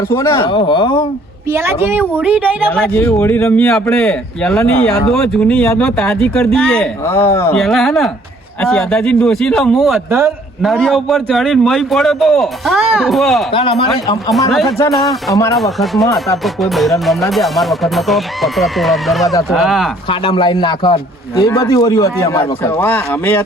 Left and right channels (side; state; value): both; normal; correlation 0.60